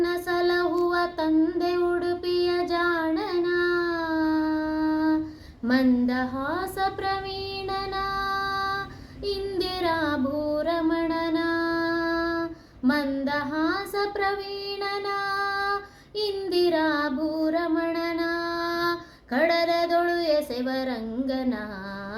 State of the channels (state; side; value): identical; both; correlation 1.00